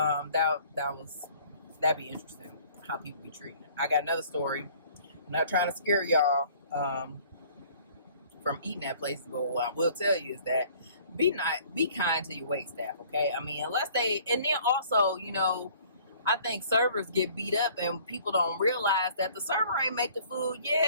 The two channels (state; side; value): inverted; both; correlation -0.54